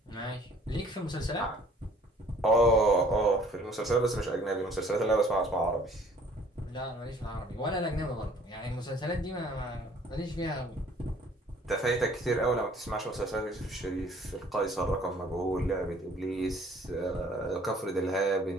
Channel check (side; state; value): both; normal; correlation 0.56